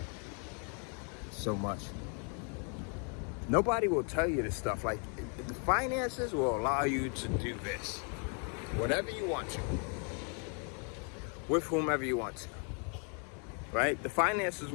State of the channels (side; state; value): right; quieter; 38.8 dB